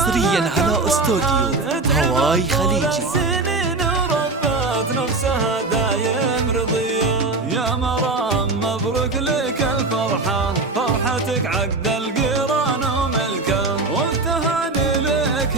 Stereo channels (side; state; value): left; quieter; 3.5 dB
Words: على استوديو هواي خليجي. سنين وربت نفسها دايم رضية. يا مرام مبروك لك الفرحة، فرحتك عقد القران وملكه، والتهاني لك